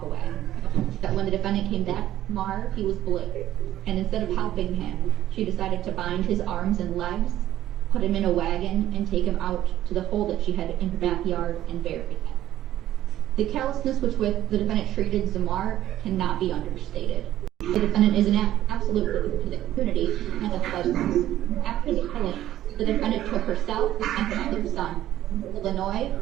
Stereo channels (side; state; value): left; quieter; 13.0 dB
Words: away. That when the defendant came back to Zamar, he was blue, and instead of helping him, she decided to bind his arms and legs, put him in a wagon, and take him out to the hole that she had in her backyard and bury him. The callousness with which the defendant treated Zamar cannot be understated. The defendant is an absolute threat to the community and the pleasures. After the killing, the defendant took herself and her other son to Illinois,